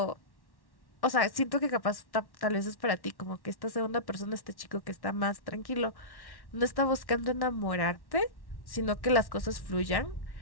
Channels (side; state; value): right; late; 1.1 ms